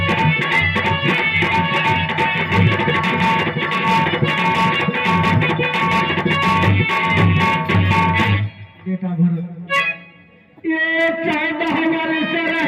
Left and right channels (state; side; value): identical; both; correlation 1.00